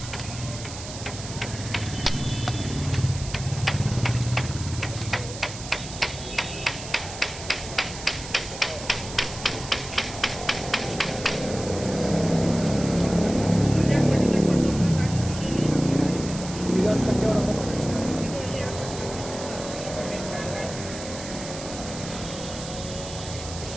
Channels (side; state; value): right; noise; hiss, 11 dB below the sound